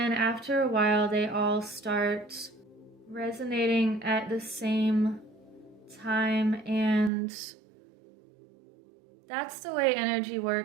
after a while, they all start resonating at the same time, and that's the way energy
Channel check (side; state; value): left; drops out; at 7.1 s